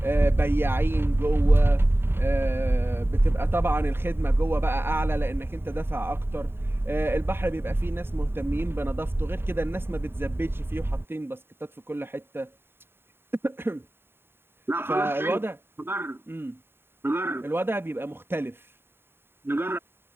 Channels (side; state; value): left; late; 0.11 ms